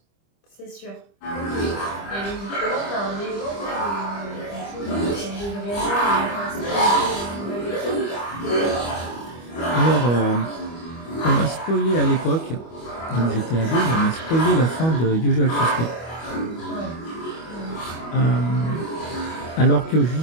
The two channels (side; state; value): right; late; 25 ms